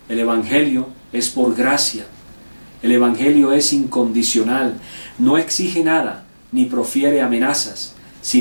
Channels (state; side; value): inverted; both; correlation -1.00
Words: El Evangelio es por gracia. El Evangelio es incondicional, no exige nada ni profiere amenazas,